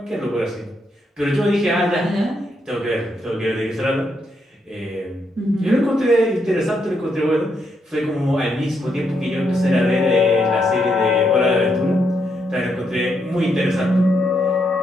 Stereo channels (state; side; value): normal; both; correlation 0.78